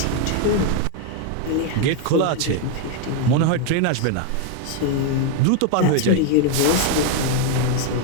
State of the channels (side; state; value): both; different; correlation 0.01